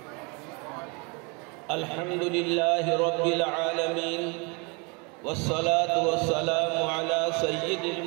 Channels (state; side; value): quieter; left; 31.0 dB